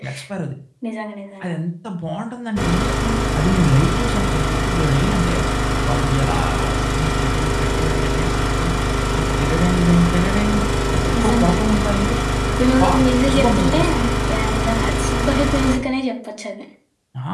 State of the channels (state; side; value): identical; both; correlation 1.00